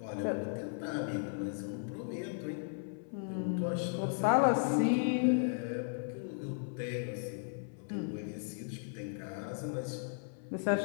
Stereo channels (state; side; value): silent; right; 54 dB below the other